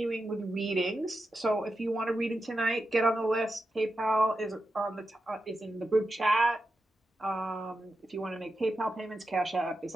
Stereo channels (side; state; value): both; normal; correlation 0.89